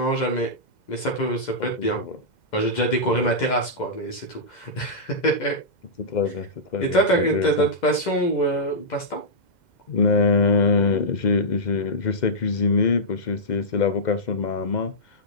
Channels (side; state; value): right; late; 2.1 ms